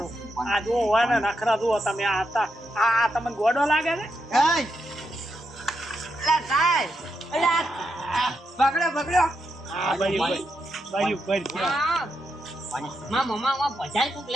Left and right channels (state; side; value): normal; both; correlation 0.83